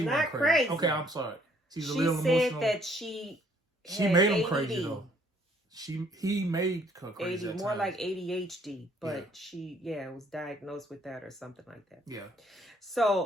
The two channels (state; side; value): normal; both; correlation 0.63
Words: crazy. Okay, I'm sorry. She's a she little said emotional. that she made him ADD. crazy though. He made her crazy. More like ADHD, but she was diagnosed with that or something like that. Yeah.